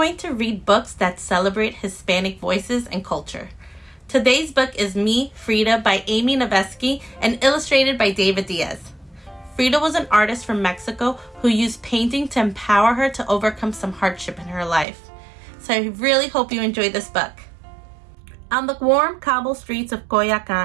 to read books that celebrate Hispanic voices and culture. Today's book is Me, Frida by Amy Novesky and illustrated by David Diaz. Frida was an artist from Mexico who used painting to empower her to overcome some hardship in her life. So I really hope you enjoy this book. On the warm cobble streets of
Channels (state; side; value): drops out; left; at 14.9 s